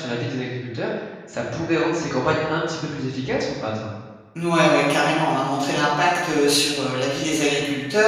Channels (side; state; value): both; identical; correlation 1.00